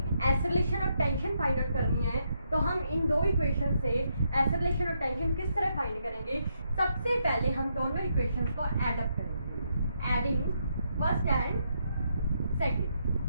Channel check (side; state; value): both; inverted; correlation -0.78